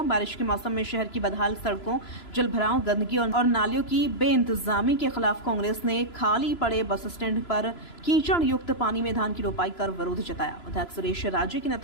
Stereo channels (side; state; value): right; late; 3.0 ms